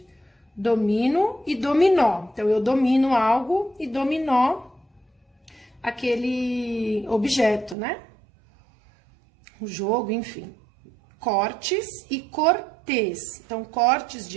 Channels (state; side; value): drops out; left; at 7.8 s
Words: Domino e dominó. Então, eu domino algo e dominó aquele objeto, né? O jogo, enfim. Cortes e cortês. Então, cortes